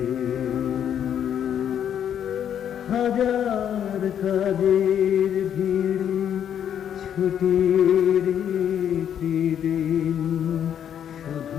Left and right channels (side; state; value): right; quieter; 9.3 dB